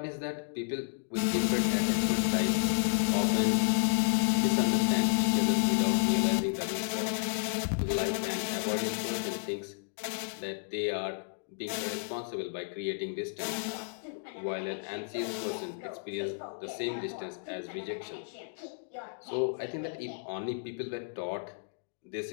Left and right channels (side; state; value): right; silent; digital silence